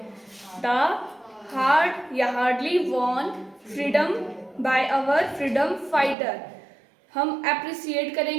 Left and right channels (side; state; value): left; drops out; at 6.2 s